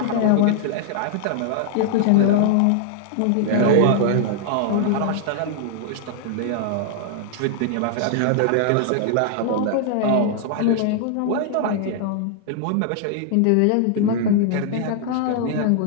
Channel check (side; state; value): both; different; correlation 0.00